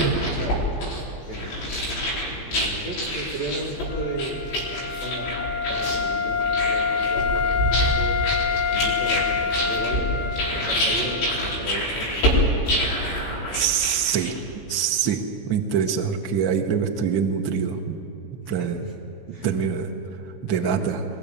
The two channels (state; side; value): late; right; 15 ms